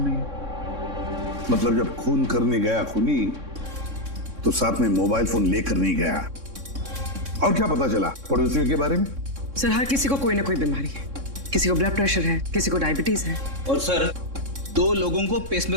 नहीं है। मतलब जब खून करने गया खूनी तो साथ में मोबाइल फोन लेकर नहीं गया। और क्या पता चला पड़ोसियों के बारे में? सर हर किसी को कोई ना कोई बीमारी है, किसी को ब्लड प्रेशर है, किसी को डायबिटीज है। और सर 2 लोगों को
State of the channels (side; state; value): left; late; 3.6 ms